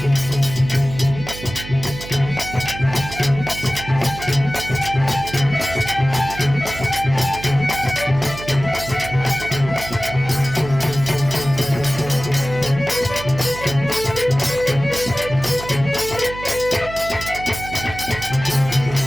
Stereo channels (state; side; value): noise; right; hum, 12 dB below the sound